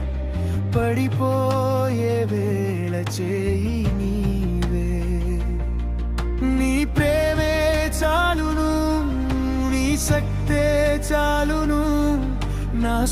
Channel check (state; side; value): identical; both; correlation 1.00